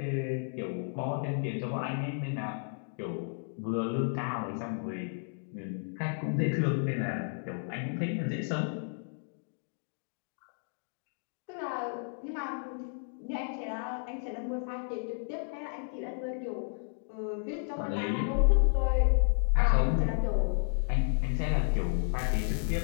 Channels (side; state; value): right; silent; digital silence